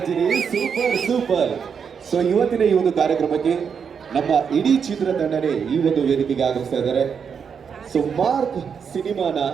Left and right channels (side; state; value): left; quieter; 6.7 dB